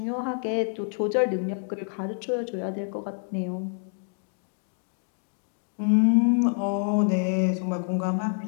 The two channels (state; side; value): silent; right; 60 dB below the other